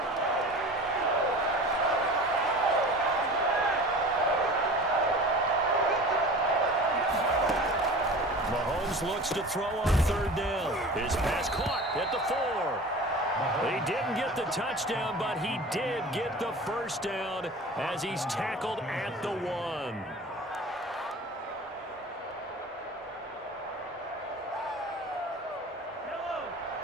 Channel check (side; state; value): both; normal; correlation 0.38